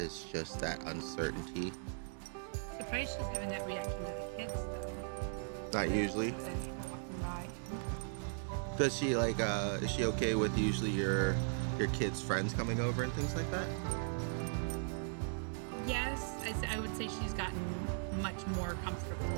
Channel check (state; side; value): silent; left; digital silence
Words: just that uncertainty. Surprised she's having that reaction to the kids though. Not usually. Then people walking by. Does she like is she okay with usually your kids' friends coming over and things like that? Yes, I would say she's gotten much more comfortable